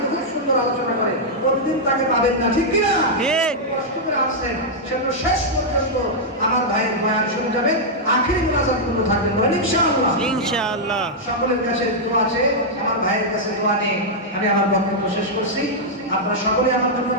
খুব সুন্দর আলোচনা করে, প্রতিদিন তাকে পাবেন না, ঠিক কিনা? ঠিক। কষ্ট করে আসছেন, সেজন্য শেষ পর্যন্ত আমার ভাইয়ের বয়ান শুনে যাবেন, আখেরি মুনাজাত পর্যন্ত থাকবেন, বলেন ইনশাআল্লাহ। ইনশাআল্লাহ। সকলের কাছে দোয়া আছে, আমার ভাইয়ের কাছে দোয়া নিয়ে আমি আমার বক্তব্য শেষ করছি। আপনারা সকলে আমার জন্য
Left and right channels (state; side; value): normal; both; correlation -0.06